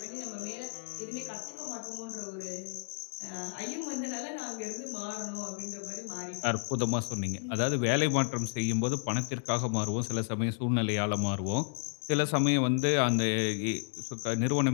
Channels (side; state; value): right; silent; digital silence